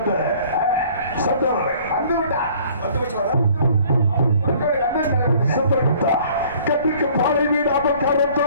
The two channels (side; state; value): both; inverted; correlation -0.54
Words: சட்டவரை சந்திரகுப்தா கட்டுக்கு பாலை வீடாமல்